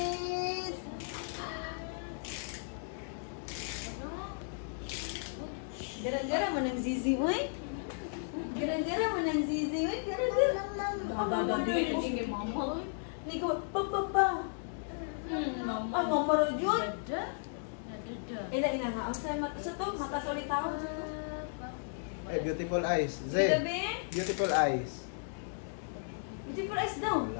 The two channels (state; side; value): silent; right; digital silence